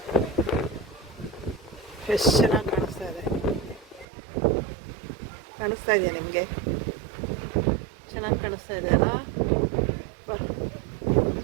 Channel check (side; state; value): left; drops out; at 4.0 s